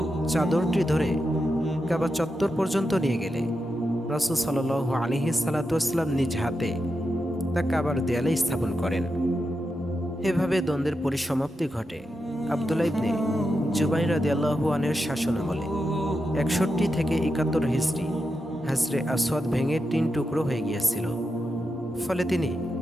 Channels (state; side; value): normal; both; correlation 0.87